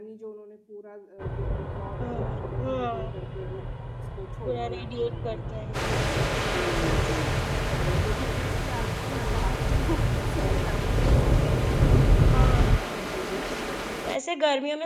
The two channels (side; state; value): both; identical; correlation 1.00